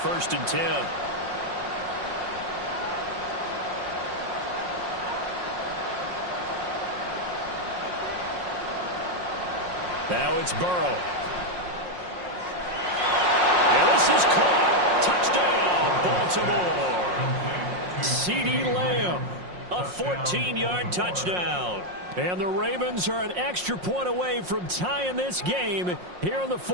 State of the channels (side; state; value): left; late; 5.6 ms